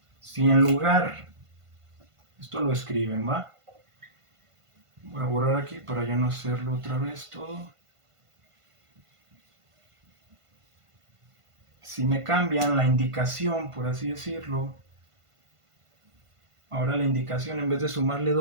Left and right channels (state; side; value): late; left; 1.5 ms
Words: si en lugar, esto lo escriben, ¿va? Voy a borrar aquí para ya no hacerlo otra vez todo. si me cambian la indicación, por así decirlo, ahora la indicación en vez de sumarle